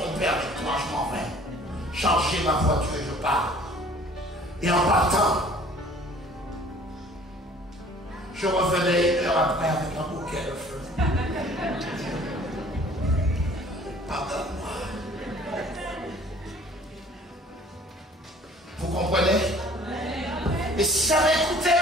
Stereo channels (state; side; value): normal; both; correlation 0.52